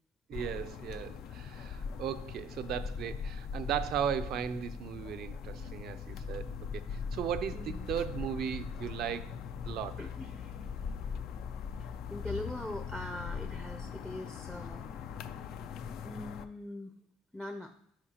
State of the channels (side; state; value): both; normal; correlation 0.56